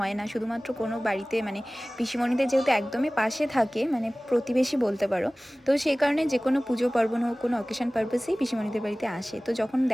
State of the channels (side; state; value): both; normal; correlation 0.98